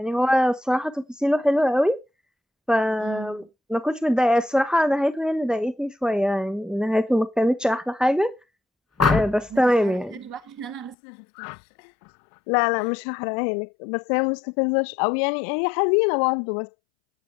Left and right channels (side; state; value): right; drops out; at 11.0 s